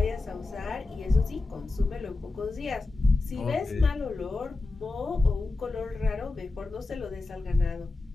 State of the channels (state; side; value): quieter; right; 3.4 dB